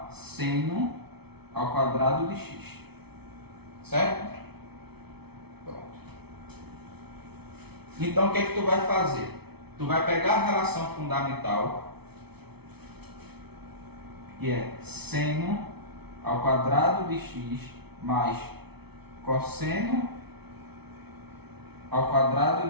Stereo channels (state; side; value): late; left; 0.98 ms